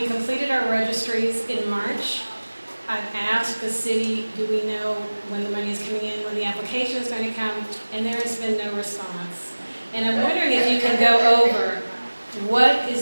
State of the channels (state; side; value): inverted; both; correlation -1.00